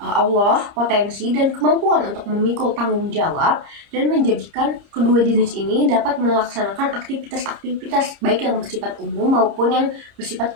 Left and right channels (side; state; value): left; late; 30 ms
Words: potensi dan kemampuan untuk memikul tanggung jawab dan menjadikan kedua jenis ini dapat melaksanakan aktivitas-aktivitas baik yang bersifat umum maupun yang bersifat